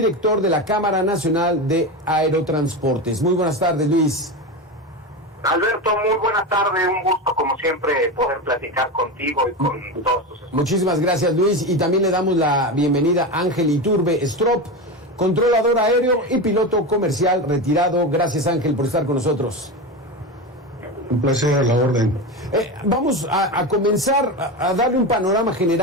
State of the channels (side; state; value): both; normal; correlation 0.20